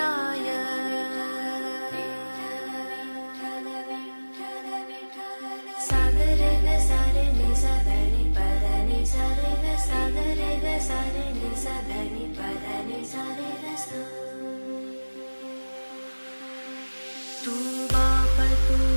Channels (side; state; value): both; inverted; correlation -1.00